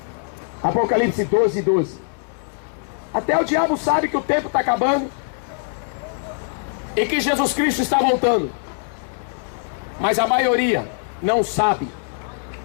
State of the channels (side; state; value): right; silent; digital silence